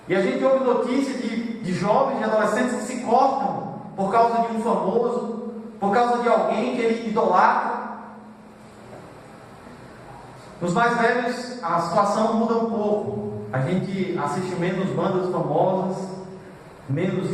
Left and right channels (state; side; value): identical; both; correlation 1.00